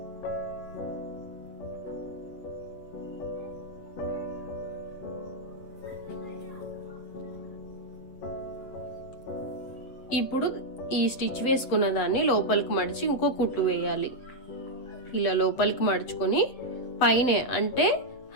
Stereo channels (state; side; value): late; right; 7.9 ms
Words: ఇప్పుడు ఈ స్టిచ్ వేసుకున్న దాన్ని లోపలికి మడిచి ఇంకో కుట్టు వేయాలి. ఇలా లోపలికి మడుచుకొని పైనే అంటే